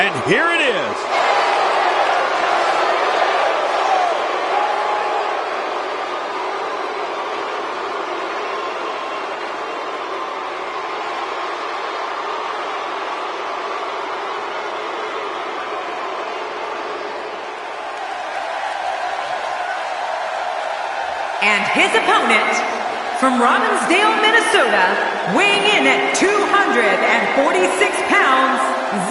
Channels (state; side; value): identical; both; correlation 1.00